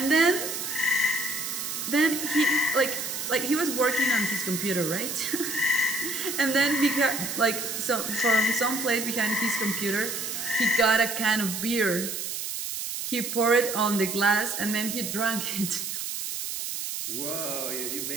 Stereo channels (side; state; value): right; noise; hiss, 4 dB below the sound